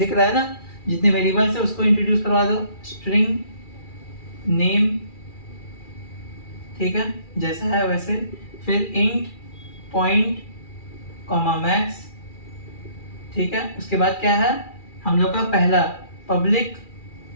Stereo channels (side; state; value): right; late; 2.4 ms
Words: रहा है ना, जितने वेरिएबल्स है उसको इंट्रोड्यूस करवा दो, स्ट्रिंग नेम। ठीक है, जैसा है वैसे। फिर इंट पॉइंट कॉमा मैक्स। ठीक है, उसके बाद क्या है हम लोग का पहला पब्लिक